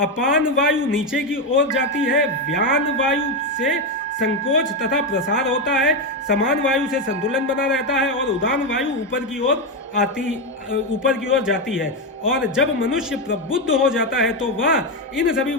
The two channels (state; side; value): normal; both; correlation 0.09